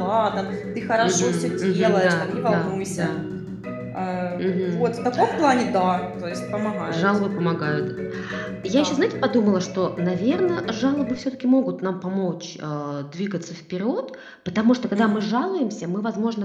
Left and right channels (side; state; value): both; identical; correlation 1.00